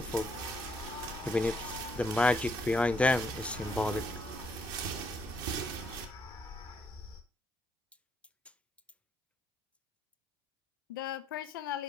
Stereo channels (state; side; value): normal; both; correlation 0.72